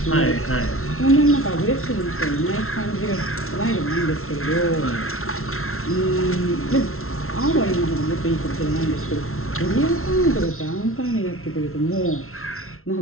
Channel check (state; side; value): late; right; 0.62 ms